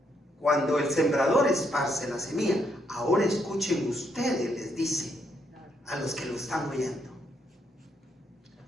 Cuando el sembrador esparce la semilla, ahora escuchen ustedes, les dice a los que lo están oyendo.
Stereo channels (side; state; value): both; normal; correlation 0.75